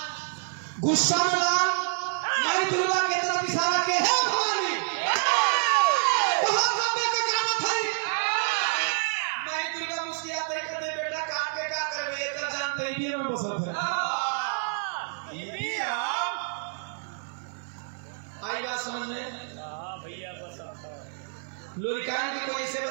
गुस्सा में लाल माई दुर्गा की तरफ इशारा के है भवानी बहुत लंबे का गाना था। माई दुर्गा मुस्कुराते ही कहते बेटा काट के क्या करबे, एकर जान तेरी में बसल है। आई बात समझ में? लोरिकान की कोई ऐसे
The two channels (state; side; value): silent; left; 59 dB below the other